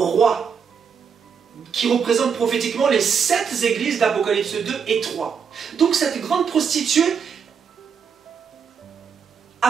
qui représentent prophétiquement les 7 églises d'Apocalypse 2 et 3. Donc cette grande prostituée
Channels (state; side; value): quieter; left; 6.6 dB